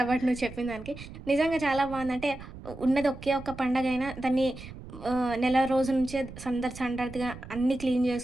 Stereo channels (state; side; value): noise; right; rumble, 14 dB below the sound